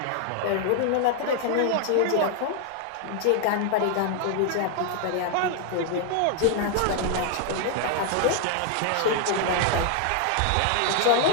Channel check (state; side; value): different; both; correlation 0.00